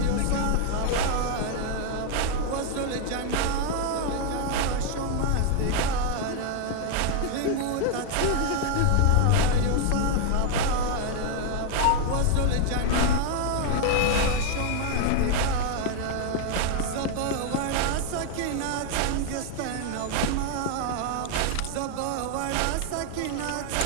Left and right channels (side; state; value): both; different; correlation 0.00